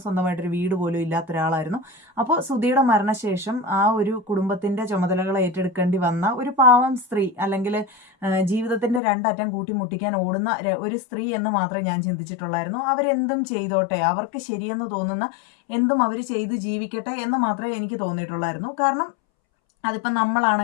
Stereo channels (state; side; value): drops out; right; at 9.0 s